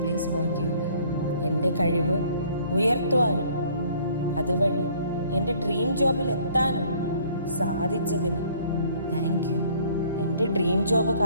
പ്ലീസ് ഫോർഗീവ് മീ. എൻ്റെ കഴിവ് ഉയർത്തുവാനും അതുവഴി എൻ്റെ ഡ്രീം ജോബിൽ എത്താനും സാധിച്ചതിന് താങ്ക് യു. എൻ്റെ ഡ്രീം ജോബ്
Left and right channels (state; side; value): inverted; both; correlation -0.58